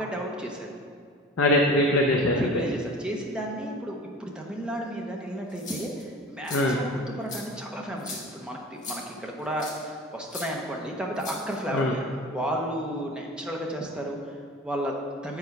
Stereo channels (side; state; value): both; normal; correlation 0.39